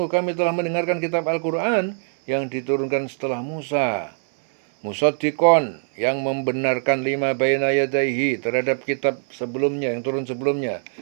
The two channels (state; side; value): silent; left; digital silence